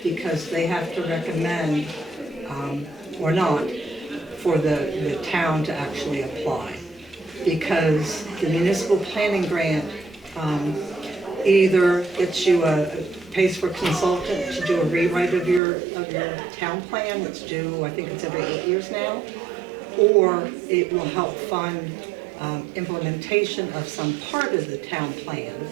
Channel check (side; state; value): left; drops out; at 15.6 s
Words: because they have to recommend, or not, for the town to actually apply. Because the municipal planning grant either gets you pays for a consultant to do a rewrite of your town plan, that's due, I think it's every 8 years now, or it will help fund implementation of some part of the town plan.